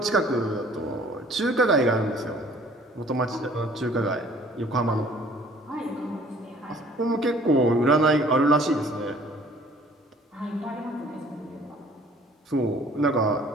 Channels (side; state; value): both; normal; correlation 0.54